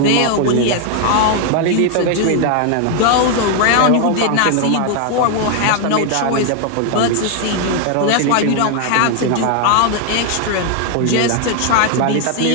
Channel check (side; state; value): both; different; correlation 0.00